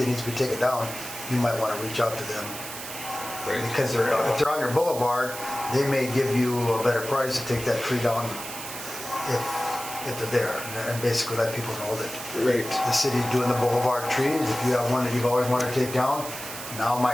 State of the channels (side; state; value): right; noise; hiss, 9 dB below the sound